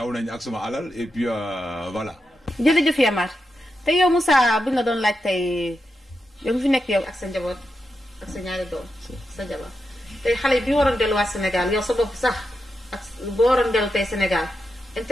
nañ ak suma alal et puis voilà. jërëjëf Yamar te yow Moussa buñ la doon laaj tey yow fi nekk yow ak sa njaboot ak sa ñaari doom sa jabar tey xale bi waroon delluwaat Sénégal yow sa bopp sax ak boo waroon dellu tey Sénégal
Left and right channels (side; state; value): both; normal; correlation 0.87